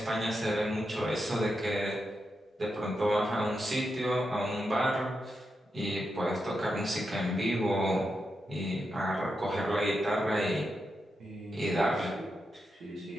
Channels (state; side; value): normal; both; correlation 0.86